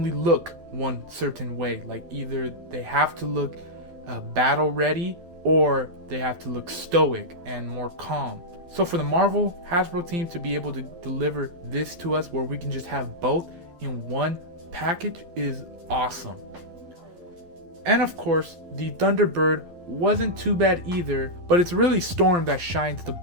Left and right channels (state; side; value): late; left; 11 ms